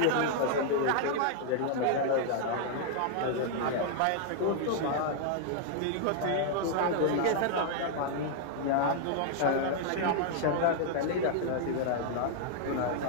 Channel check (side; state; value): both; different; correlation -0.01